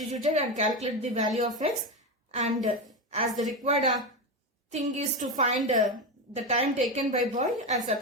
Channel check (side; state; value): both; normal; correlation 0.15